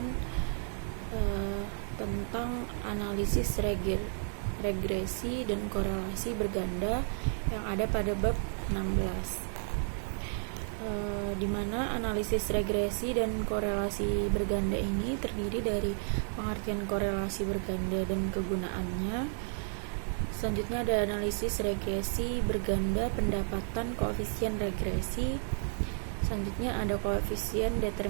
tentang analisis regresi dan korelasi berganda yang ada pada bab 16, di mana analisis regresi dan korelasi berganda ini terdiri dari pengertian korelasi berganda dan kegunaannya. Selanjutnya ada analisis regresi berganda pendapatan koefisien regresi. Selanjutnya ada koefisien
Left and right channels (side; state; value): left; silent; 56 dB below the other